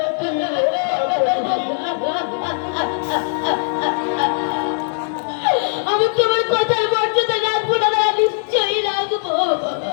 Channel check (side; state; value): right; silent; 60 dB below the other